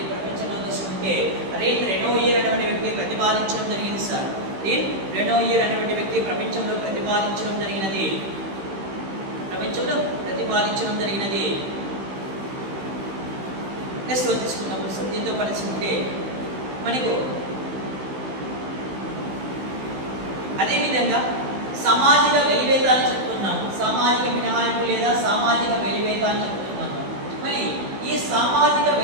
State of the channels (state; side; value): late; left; 16 ms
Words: ప్రపంచంలో తీసుకుంటే రెనోయిర్ అనేటువంటి వ్యక్తి ప్రతిపాదించడం జరిగింది సార్. రెనోయిర్ అనేటువంటి వ్యక్తి ప్రపంచంలో ప్రతిపాదించడం జరిగినది. నెక్స్ట్ తీసుకున్నప్పుడు సార్ దీంతో పరిస్థితి మనకు అదేవిధంగా సామాజిక వెలివేత అని చెప్తున్నాము. సామాజిక మినహాయింపు లేదా సామాజిక వెలివేత అని చెప్తున్నాము. మరి ఈ సామాజిక